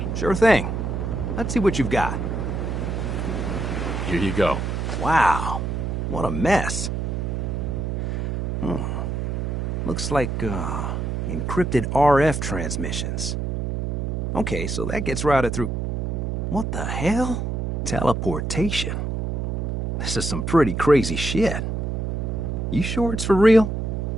Sure thing. Let's see what you've got. Here you go. Wow. What a mess. Looks like, encrypted RF transmissions. Okay, so that gets routed through... What the hell? Teleportation. This is some pretty crazy shit. You sure it's for real?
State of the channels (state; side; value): noise; right; hum, 2 dB below the sound